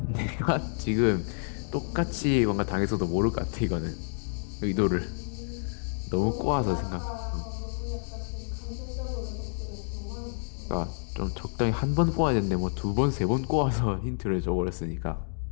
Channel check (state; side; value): silent; right; digital silence